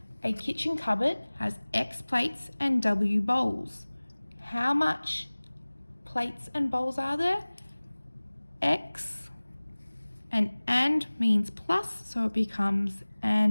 A kitchen cupboard has X plates and W bowls. How much plates and bowls are there? X, and means plus, so it becomes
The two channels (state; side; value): inverted; both; correlation -1.00